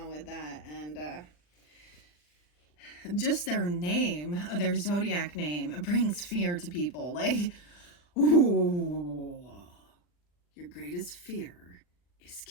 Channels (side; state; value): right; late; 40 ms